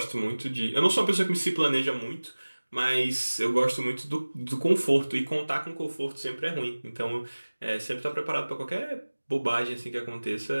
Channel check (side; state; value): both; inverted; correlation -1.00